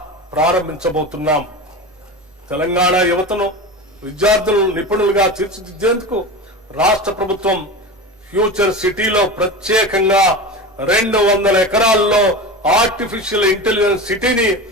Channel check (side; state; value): both; normal; correlation 0.27